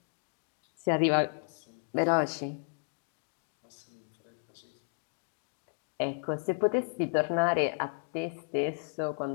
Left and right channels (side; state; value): right; silent; digital silence